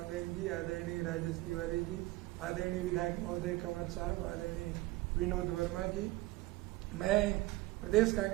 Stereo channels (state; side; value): quieter; left; 19.5 dB